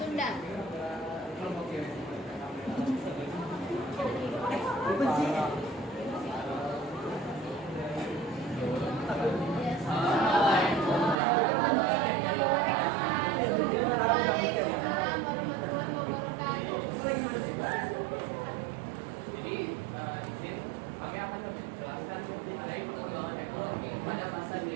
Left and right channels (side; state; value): left; drops out; at 11.2 s